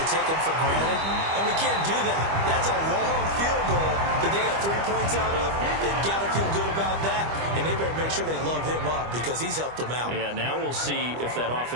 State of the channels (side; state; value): left; late; 25 ms